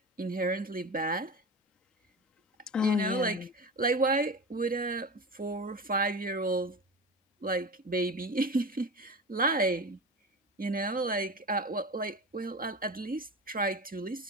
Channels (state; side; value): normal; both; correlation 0.29